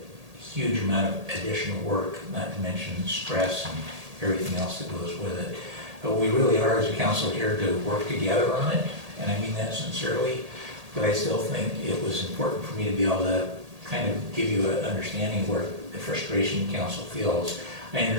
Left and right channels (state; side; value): late; left; 1.8 ms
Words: huge amount of additional work, not to mention stress and everything else that goes with it. But we really are, as a council, here to work together on it, and I mean that sincerely. But I still think it was important for me to be able to kind of give you an understanding where the frustration council feels. I